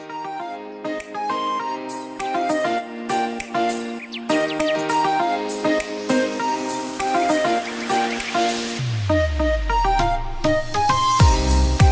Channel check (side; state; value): both; identical; correlation 1.00